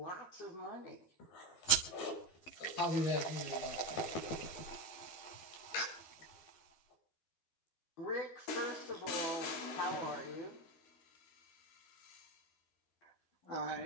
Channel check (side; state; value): right; late; 12 ms